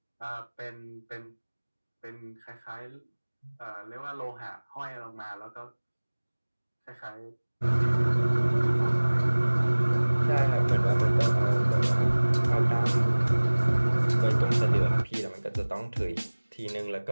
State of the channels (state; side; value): inverted; both; correlation -1.00